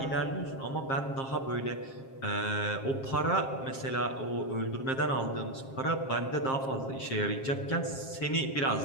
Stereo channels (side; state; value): right; late; 7.5 ms